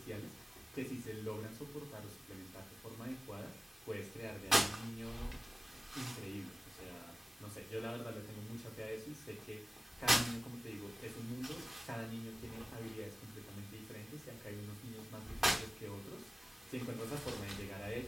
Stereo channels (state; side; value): normal; both; correlation 0.97